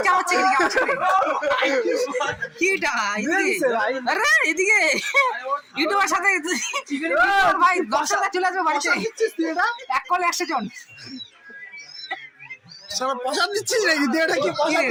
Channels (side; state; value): both; identical; correlation 1.00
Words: হচ্ছে কি আমার সাথে কি এটা এদিকে আরে এদিকে ইউটিউবের সাথে ভাই 10 টাকা চলে আসবে বাড়িতে এক কলে 100 জন সব পয়সা দিচ্ছিস নাকি দেটা কি পয়সা